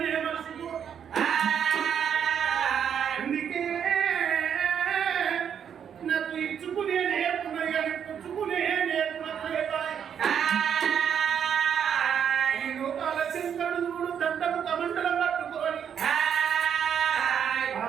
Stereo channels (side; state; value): left; quieter; 8.2 dB